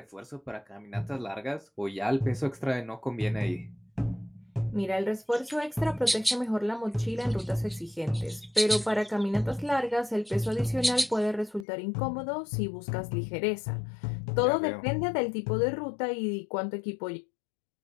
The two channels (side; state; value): right; drops out; at 11.7 s